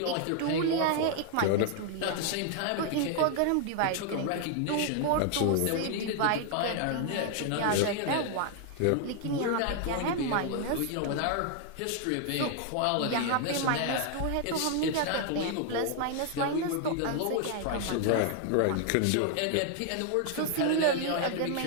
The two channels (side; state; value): both; different; correlation 0.00